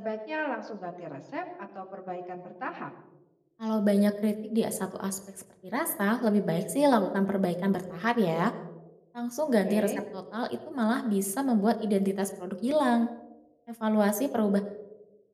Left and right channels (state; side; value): identical; both; correlation 1.00